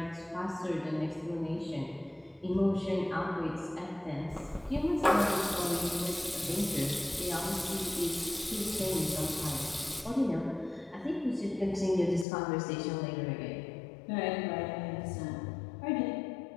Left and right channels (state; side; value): drops out; right; at 12.2 s